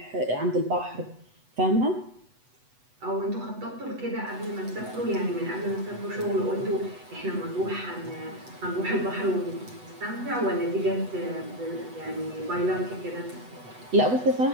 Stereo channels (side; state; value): left; late; 8.1 ms